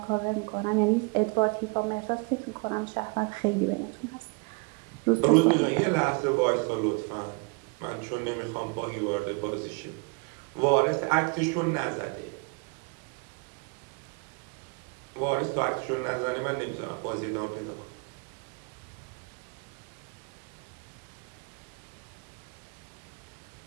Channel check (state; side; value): quieter; left; 32.1 dB